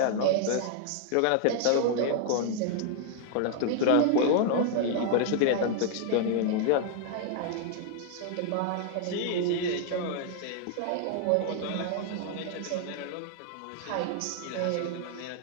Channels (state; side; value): different; both; correlation 0.00